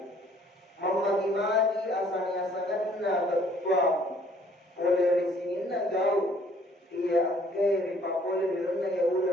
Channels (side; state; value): both; normal; correlation 0.60